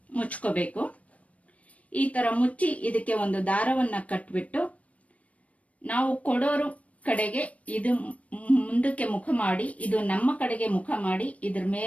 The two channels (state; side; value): late; right; 0.067 ms